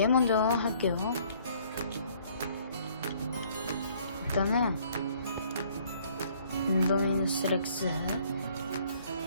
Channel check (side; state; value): both; inverted; correlation -0.60